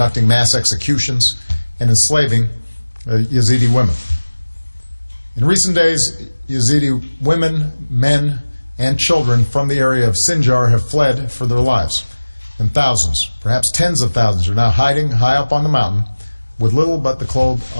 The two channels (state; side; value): inverted; both; correlation -1.00